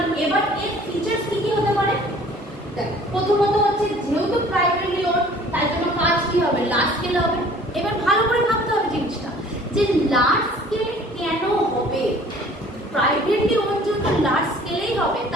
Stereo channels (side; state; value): both; normal; correlation 0.51